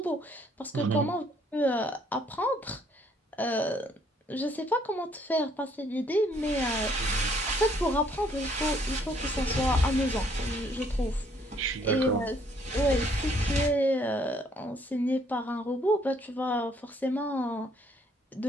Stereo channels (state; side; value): normal; both; correlation 0.65